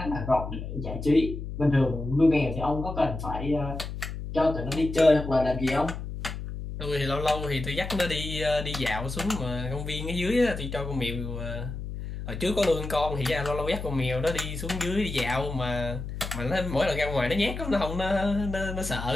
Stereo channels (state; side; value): noise; left; hum, 7 dB below the sound